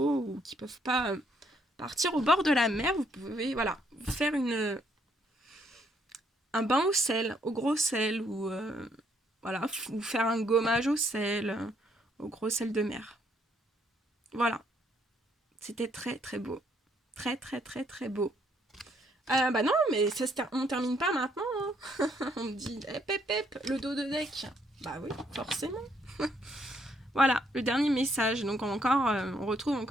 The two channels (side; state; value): both; normal; correlation 0.70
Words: ou qui ne peuvent pas partir au bord de la mer, vous pouvez, voilà, vous faire un bain au sel, au gros sel, ou voilà, vous faire un gommage au sel, au gros sel de mer. Voilà. C'était très très beau. Très très très très beau. Non, mais on termine pas maintenant. Hein. On me dit, le dos de deck. Bah oui, forcément. Voilà, le dernier message. Donc on retrouve